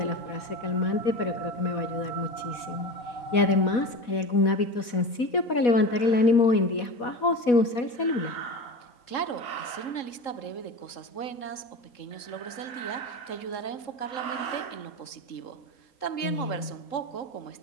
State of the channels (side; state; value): right; late; 4.1 ms